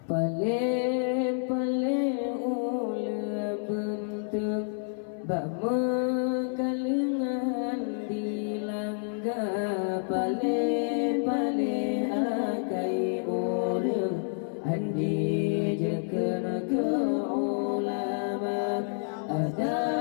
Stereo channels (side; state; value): right; silent; 57 dB below the other